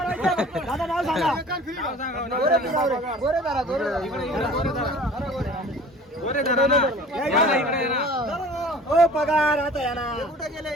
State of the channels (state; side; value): normal; both; correlation 0.45